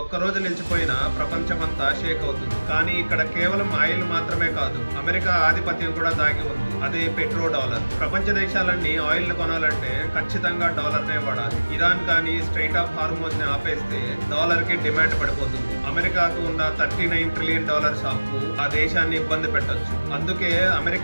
ఒక్కరోజు నిలిచిపోయినా ప్రపంచం అంతా షేక్ అవుతుంది. కానీ ఇక్కడ కేవలం ఆయిల్ మాత్రమే కాదు, అమెరికా ఆధిపత్యం కూడా దాగి ఉంది. అదే పెట్రో డాలర్. ప్రపంచ దేశాలన్నీ ఆయిల్ ను కొనాలంటే ఖచ్చితంగా డాలర్ నే వాడాలి. ఇరాన్ కానీ స్ట్రైట్ ఆఫ్ హార్మోజ్ ని ఆపేస్తే డాలర్ కి డిమాండ్ పడిపోతుంది. అమెరికాకు ఉన్న $39 ట్రిలియన్ అప్పు ఆ దేశాన్ని ఇబ్బంది పెట్టొచ్చు. అందుకే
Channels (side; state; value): both; inverted; correlation -1.00